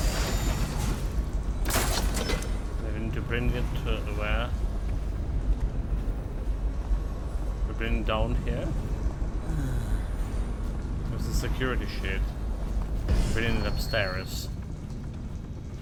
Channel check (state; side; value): identical; both; correlation 1.00